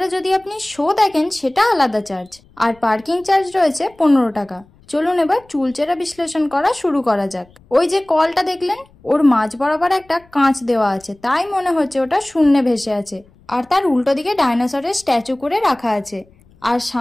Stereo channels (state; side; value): noise; left; rumble, 29 dB below the sound